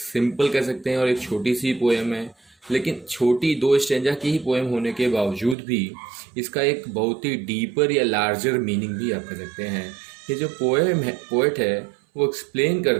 कह सकते हैं और एक छोटी सी पोएम है। लेकिन छोटी 2 स्टेंजा की ही पोएम होने के बावजूद भी इसका एक बहुत ही डीपर या लार्जर मीनिंग भी आप कह सकते हैं। ये जो पोएट है वो एक्सप्लेन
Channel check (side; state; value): left; drops out; at 5.6 s